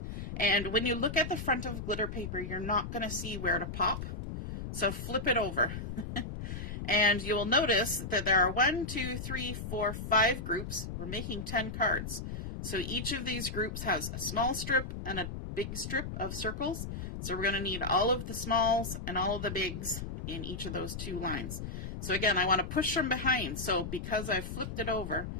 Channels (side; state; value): left; noise; rumble, 6 dB below the sound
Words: And when you look at the front of glitter paper, you're not going to see where to pop. So flip it over. And you'll notice that there are 1, 2, 3, 4, 5 groups. We're making 10 cards. So each of these groups has a small strip and a big strip of circles. So we're going to need all of the smalls and all of the bigs in each of those 2 lines. So again, I want to push from behind. So because I've flipped it over,